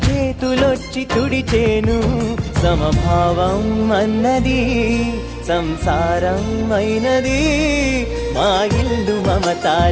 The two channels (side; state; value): both; identical; correlation 1.00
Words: చేతులొచ్చి తుడిచేను. సమభావం అన్నది సంసారం అయినది, మా ఇల్లు